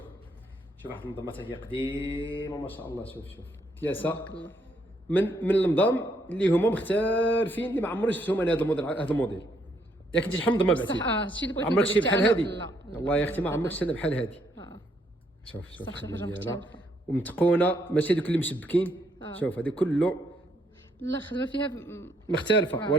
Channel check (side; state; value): both; normal; correlation 0.72